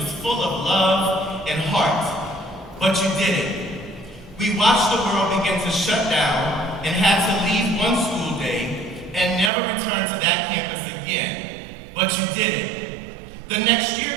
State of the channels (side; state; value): left; drops out; at 9.5 s